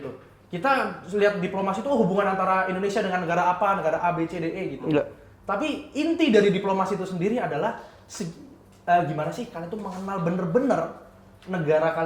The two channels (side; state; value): both; identical; correlation 1.00